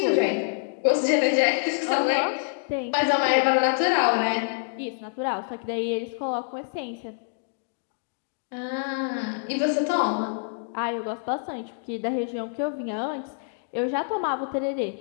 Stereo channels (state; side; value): silent; right; digital silence